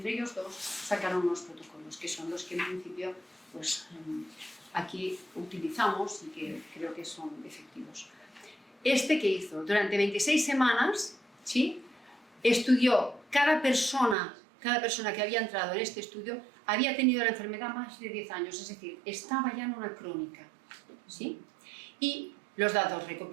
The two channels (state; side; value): drops out; left; at 14.2 s